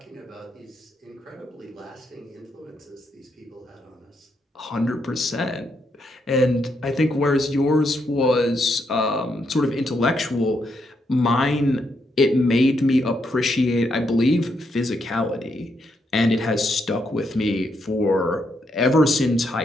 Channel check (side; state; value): both; normal; correlation 0.78